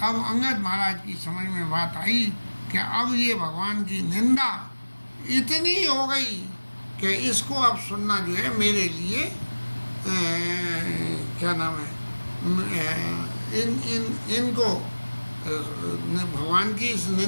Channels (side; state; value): both; inverted; correlation -1.00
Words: अंगद महाराज की समझ में बात आई कि अब ये भगवान की निंदा इतनी हो गई कि इसको अब सुनना जो है मेरे लिए क्या नाम है इनको भगवान की इस